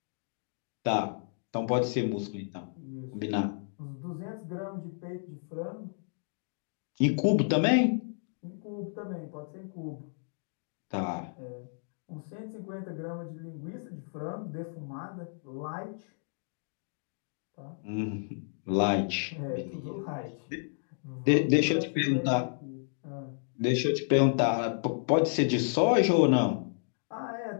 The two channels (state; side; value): silent; right; digital silence